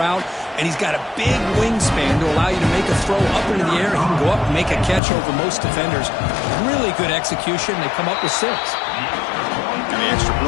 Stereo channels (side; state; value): right; drops out; at 5.0 s